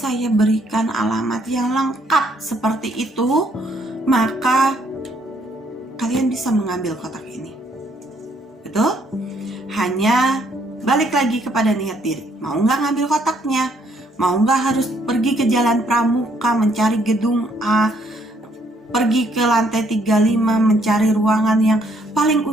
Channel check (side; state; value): both; normal; correlation 0.68